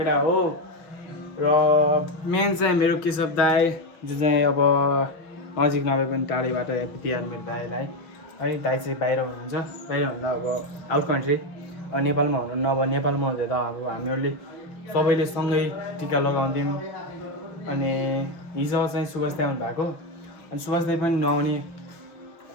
हो। र मेन चाहिँ मेरो केशव दाई जो चाहिँ अब नजिक नभए पनि टाढैबाट ह्यापी तिहार मेरो दाईलाई है। दाई चाहिँ बाहिर हुनुहुन्छ, बाहिर भन्दा अब आउट कन्ट्री, अब नेपालमा हुनुहुन्न। अब नेपालमा हुँदा त अब हामीहरूले सबैले सँगै टिका लगाउँथ्यौँ। अनि हिजो चाहिँ सुभाष दाई आउनु भएको, अनि सुभाष दाई पनि नआउने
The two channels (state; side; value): late; right; 5.7 ms